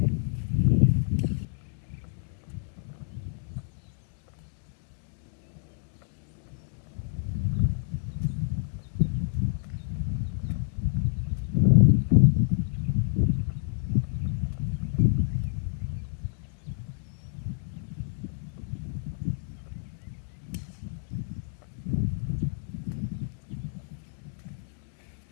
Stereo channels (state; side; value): silent; right; digital silence